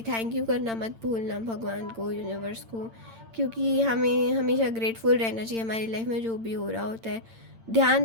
Thank you करना मत भूलना भगवान को, यूनिवर्स को, क्योंकि हमें हमेशा ग्रेटफुल रहना चाहिए हमारी लाइफ में जो भी हो रहा होता है। ध्यान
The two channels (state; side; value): late; left; 8.9 ms